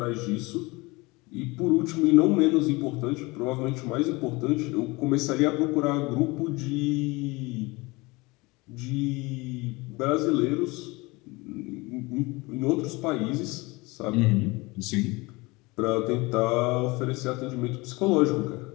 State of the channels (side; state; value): right; quieter; 23.9 dB